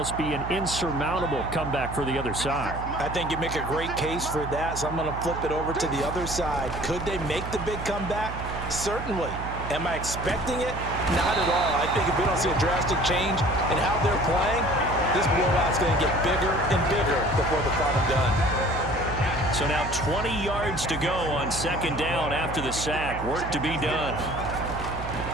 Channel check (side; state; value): right; noise; hum, 8 dB below the sound